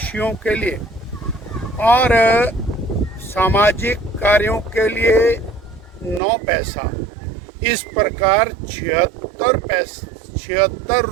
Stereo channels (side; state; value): left; drops out; at 6.2 s